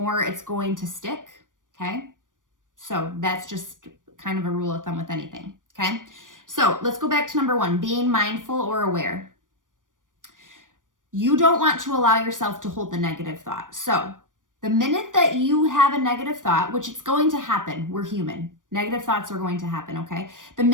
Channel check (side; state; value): left; late; 0.88 ms